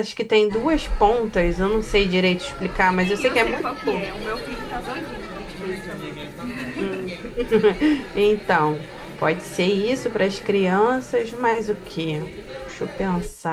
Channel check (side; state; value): both; identical; correlation 1.00